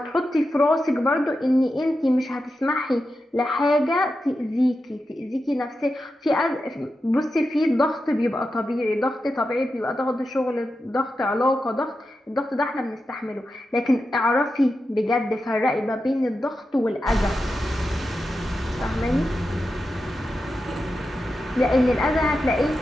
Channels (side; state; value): both; normal; correlation 0.90